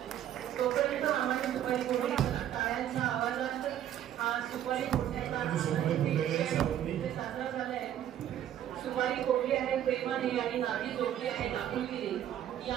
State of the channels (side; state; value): left; quieter; 11.0 dB